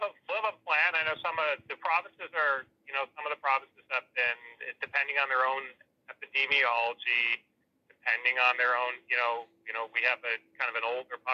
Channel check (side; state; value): both; identical; correlation 1.00